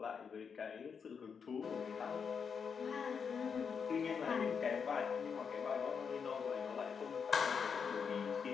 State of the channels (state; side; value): quieter; right; 6.3 dB